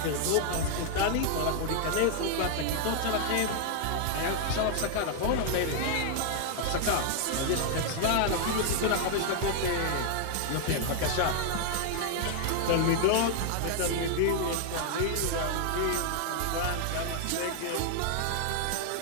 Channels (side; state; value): both; different; correlation 0.00